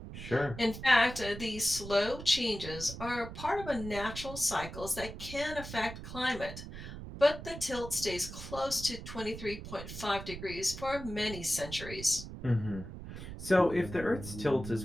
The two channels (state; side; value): noise; right; rumble, 10 dB below the sound